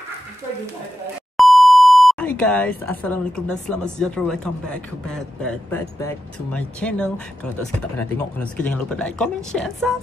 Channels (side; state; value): both; normal; correlation 0.89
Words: Hi guys, Assalamualaikum dan selamat sejahtera. Welcome back to my channel. Kalau tak suka tak pernah tengok, kalau suka jangan lupa like, comment, share,